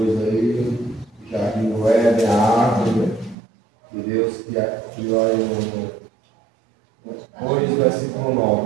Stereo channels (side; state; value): left; drops out; at 3.4 s